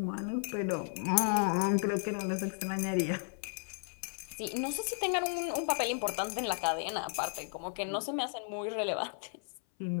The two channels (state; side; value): silent; right; 55 dB below the other